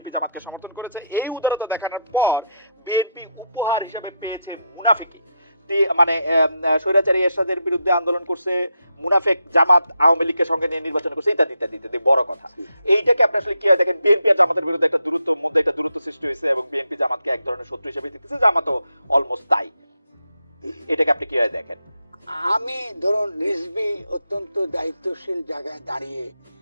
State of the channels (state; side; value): inverted; both; correlation -0.81